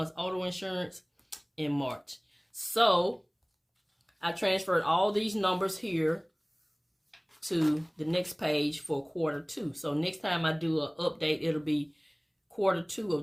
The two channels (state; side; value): identical; both; correlation 1.00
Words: auto insurance in March. So I transferred all these numbers here to the next page for quarter two. So next time I do an update, it'll be quarter two